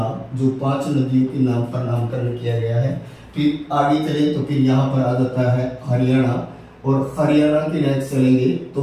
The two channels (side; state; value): both; identical; correlation 1.00